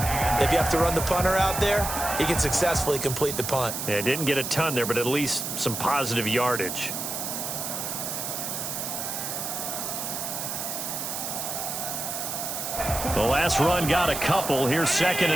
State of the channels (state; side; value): noise; right; hiss, 4 dB below the sound